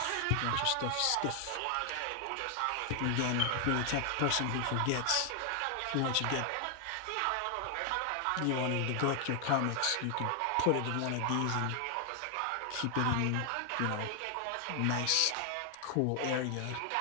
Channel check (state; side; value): different; both; correlation 0.00